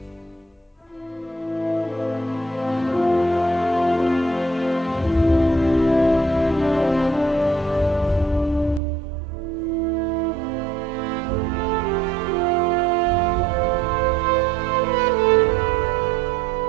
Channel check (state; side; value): drops out; left; at 8.8 s